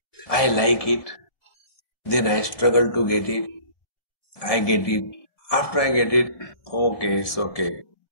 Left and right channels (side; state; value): right; late; 1.7 ms